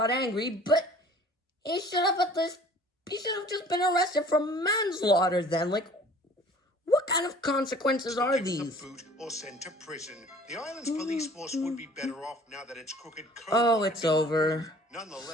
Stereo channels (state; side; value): normal; both; correlation 0.50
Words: angry, but he should have just been arrested for manslaughter then. Like, what kind of consequences are given the these? boot or sent to prison. The island's police force would be better off now that its crooked code. Oh, had it's been over. removed.